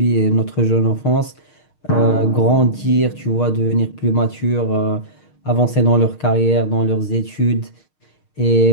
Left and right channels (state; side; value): late; right; 6.5 ms